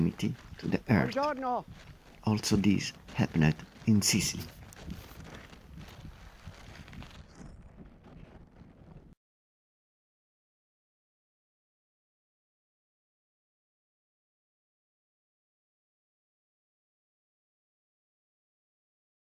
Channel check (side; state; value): both; identical; correlation 1.00